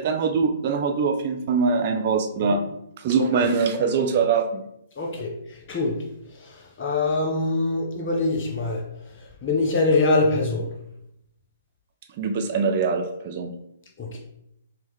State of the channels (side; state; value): both; inverted; correlation -0.42